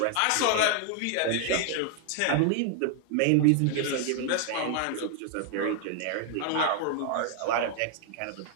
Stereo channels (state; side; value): different; both; correlation 0.00